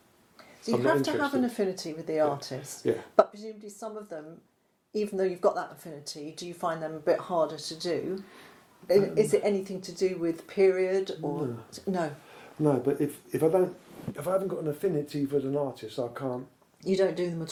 So you I'm not have to have interested. an affinity with the artist. Yeah. But presumably some of them, even though you've got that affinity, do you find them a bit harder to do? Is it anything to do with period or no? No, but if I haven't got an affinity with an artist, I can't. You don't do them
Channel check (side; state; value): both; identical; correlation 1.00